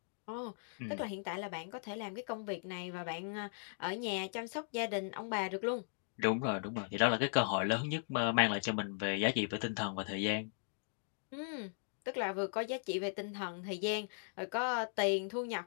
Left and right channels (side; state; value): right; silent; digital silence